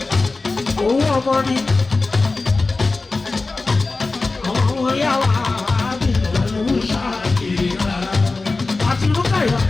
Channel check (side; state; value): right; quieter; 3.6 dB